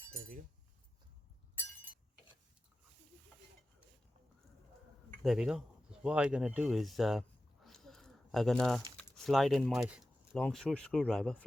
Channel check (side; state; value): both; normal; correlation 0.93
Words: There we go. There we go. So what I'm gonna do is I'm gonna slide in my long screwdriver,